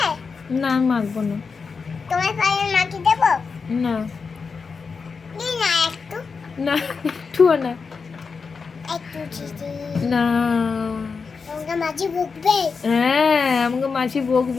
না আমি মাখবো না। তোমার পায়ে মাটি দেবো? না দিই না একটু, না একটুও না। একটু দিদি। না। তোমাকে মাঝি বকবে? হ্যাঁ আমাকে মাছি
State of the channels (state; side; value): quieter; right; 5.1 dB